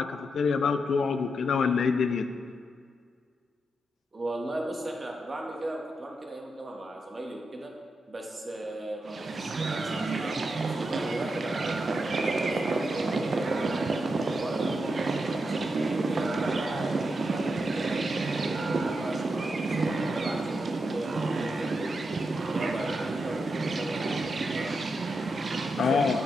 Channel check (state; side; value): normal; both; correlation 0.85